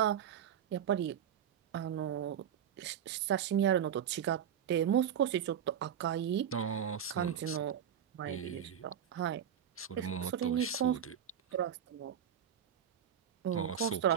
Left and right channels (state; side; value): quieter; left; 9.1 dB